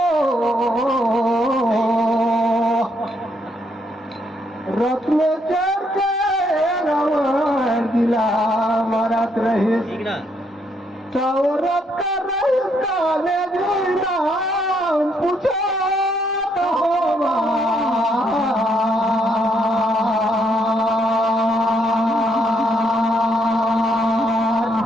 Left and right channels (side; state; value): both; normal; correlation 0.73